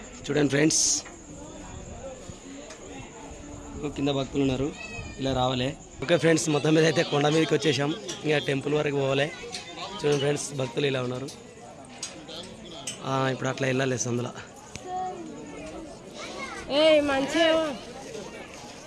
చూడండి ఫ్రెండ్స్, కింద భక్తులు ఉన్నారు, ఇలా రావాలి. ఓకే ఫ్రెండ్స్, మొత్తం మీద అయితే కొండ మీదకి వచ్చేసాం, ఇంకా టెంపుల్ వరకు పోవాలి. చూడండి ఫ్రెండ్స్, భక్తులు ఇలా ఉన్నారు. ఇప్పుడు అట్లా వెళ్ళాలి సందులో.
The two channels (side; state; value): both; identical; correlation 1.00